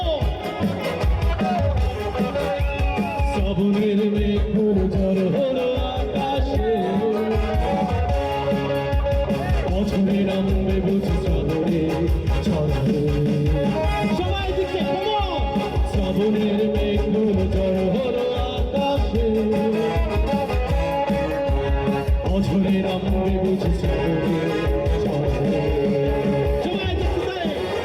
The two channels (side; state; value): both; identical; correlation 1.00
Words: শ্রাবণের মেঘগুলো ঝড় হলো আকাশে, বছরে নামবে বুঝি শ্রাবণে ঝড়ে। সবাই দিকে come on! শ্রাবণের মেঘগুলো ঝড় হলো আকাশে, বছরে নামবে বুঝি শ্রাবণে ঝড়ে।